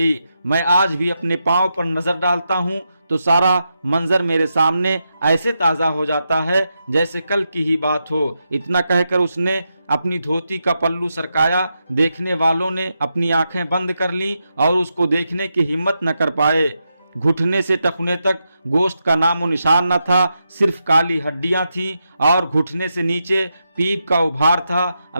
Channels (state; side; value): inverted; both; correlation -0.86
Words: मैं आज भी अपने पांव पर नजर डालता हूँ तो सारा मंजर मेरे सामने ऐसे ताज़ा हो जाता है जैसे कल की ही बात हो। इतना कहकर उसने अपनी धोती का पल्लू सरकाया। देखने वालों ने अपनी आंखें बंद कर लीं और उसको देखने की हिम्मत न कर पाए। घुटने से टखने तक गोश्त का नामो निशान न था, सिर्फ काली हड्डियां थीं और घुटने से नीचे पीप का उभार था।